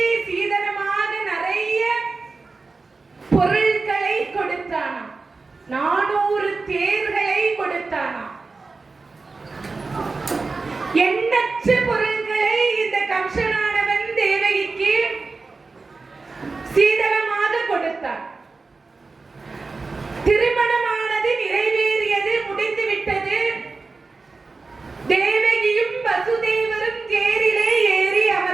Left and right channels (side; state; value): left; quieter; 4.0 dB